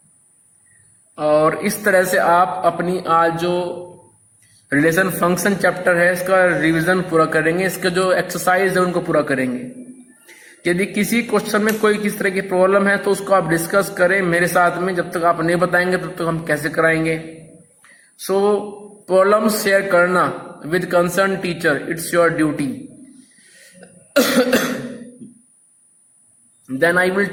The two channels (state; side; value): identical; both; correlation 1.00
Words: और इस तरह से आप अपनी आज जो रिलेशन फंक्शन चैप्टर है इसका रिवीजन पूरा करेंगे, इसके जो एक्सरसाइज है उनको पूरा करेंगे। यदि किसी क्वेश्चन में कोई किस तरह की प्रॉब्लम है तो उसको आप डिस्कस करें मेरे साथ में, जब तक आप नहीं बताएंगे तब तक हम कैसे कराएंगे। सो प्रॉब्लम शेयर करना with concern teacher, it's your duty. Then I will